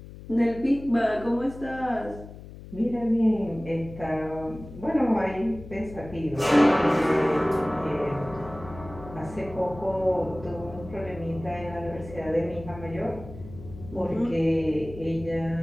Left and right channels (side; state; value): left; noise; hum, 15 dB below the sound